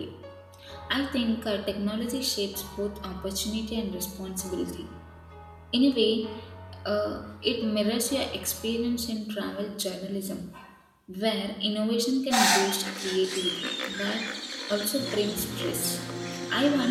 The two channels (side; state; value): both; identical; correlation 1.00